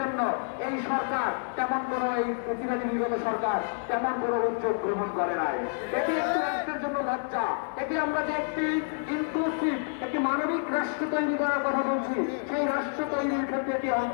জন্য এই সরকার তেমন কোনো, এই প্রতিবাদী বিগত সরকার তেমন কোনো উদ্যোগ গ্রহণ করে নাই। এটি একটি রাষ্ট্রের জন্য লজ্জা। এটি আমরা যে একটি ইনক্লুসিভ, একটি মানবিক রাষ্ট্র তৈরি করার কথা বলছি, সেই রাষ্ট্র তৈরির ক্ষেত্রে এটি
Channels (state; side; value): silent; right; digital silence